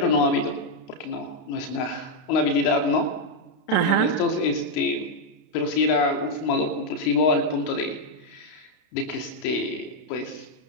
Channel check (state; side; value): late; right; 32 ms